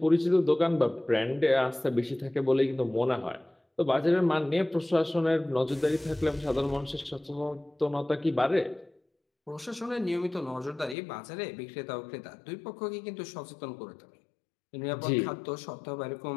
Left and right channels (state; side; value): drops out; right; at 11.0 s